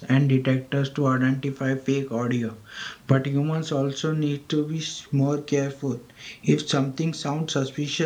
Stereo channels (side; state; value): both; identical; correlation 1.00